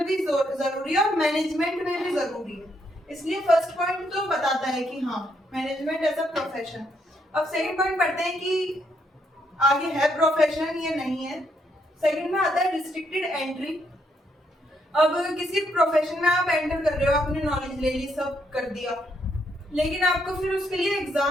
भी जरूरी है, और मैनेजमेंट में भी जरूरी है। इसलिए फर्स्ट पॉइंट तो बताता है कि हाँ मैनेजमेंट एज अ प्रोफेशन। अब सेकंड पॉइंट पढ़ते हैं कि आगे है प्रोफेशन या नहीं है। सेकंड में आता है रिस्ट्रिक्टेड एंट्री। अब किसी प्रोफेशन में आप एंटर कर रहे हो, आपने नॉलेज ले ली, सब कर दिया, लेकिन आपको फिर उसके लिए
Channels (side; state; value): both; normal; correlation 0.75